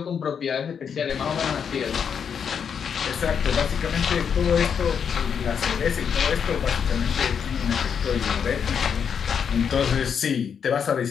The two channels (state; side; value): quieter; right; 7.2 dB